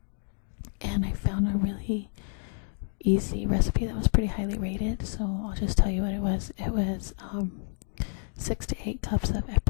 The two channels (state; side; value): silent; right; 59 dB below the other